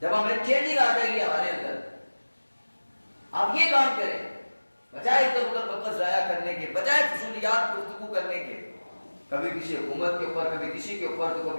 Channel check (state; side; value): inverted; both; correlation -1.00